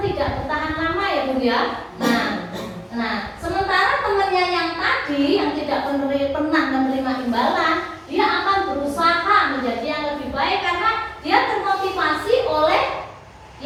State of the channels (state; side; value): identical; both; correlation 1.00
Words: bertahan lama ya Bu ya. Nah, sementara temannya yang tadi yang tidak pernah menerima imbalan, dia akan berusaha menjadi yang lebih baik karena dia termotivasi oleh